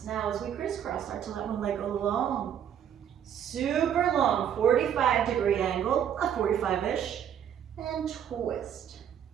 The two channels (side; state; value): left; quieter; 9.2 dB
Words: Now as we crisscross, start to let one leg go long. Super long, 45-degree angle, a 45-ish, and twist,